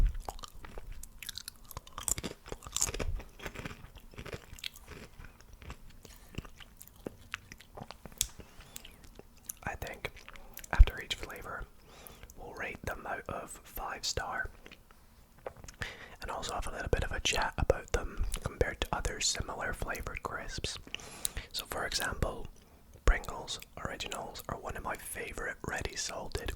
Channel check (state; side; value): identical; both; correlation 1.00